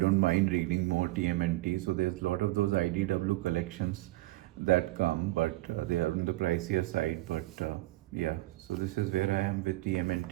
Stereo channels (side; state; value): left; quieter; 19.1 dB